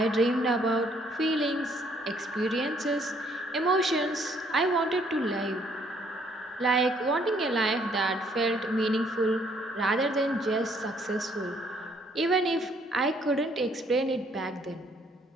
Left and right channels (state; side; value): normal; both; correlation 0.66